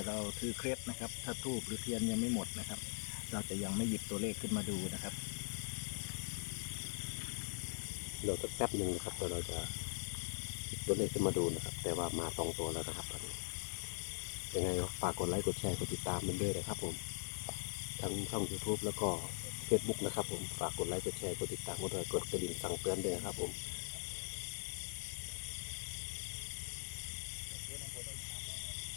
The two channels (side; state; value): right; silent; digital silence